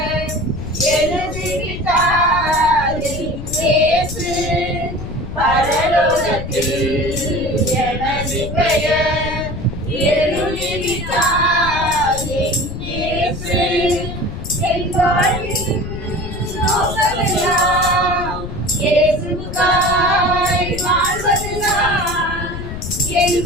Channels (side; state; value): left; noise; rumble, 8 dB below the sound